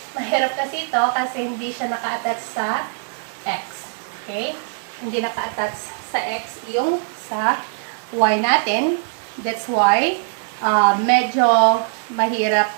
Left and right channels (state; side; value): silent; left; digital silence